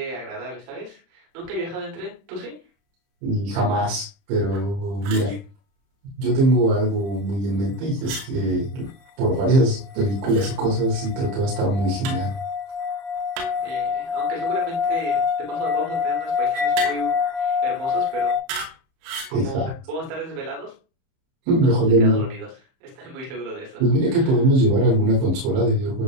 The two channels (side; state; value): left; late; 30 ms